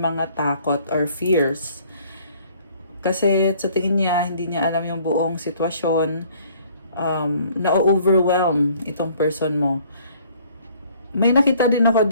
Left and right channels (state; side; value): inverted; both; correlation -0.58